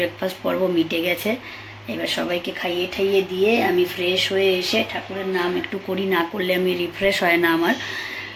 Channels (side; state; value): both; identical; correlation 1.00